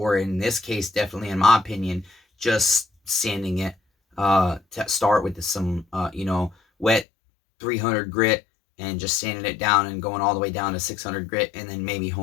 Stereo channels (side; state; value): right; drops out; at 7.1 s